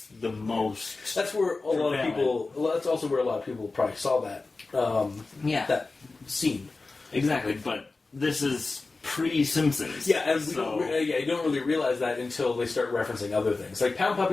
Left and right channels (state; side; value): quieter; right; 3.7 dB